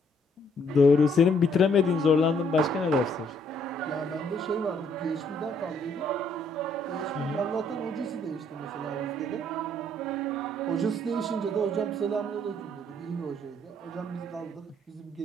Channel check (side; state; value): both; normal; correlation 0.67